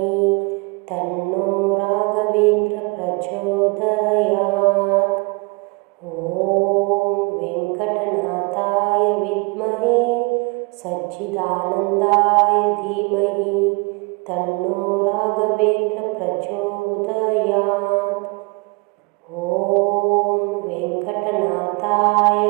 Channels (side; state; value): left; quieter; 29.4 dB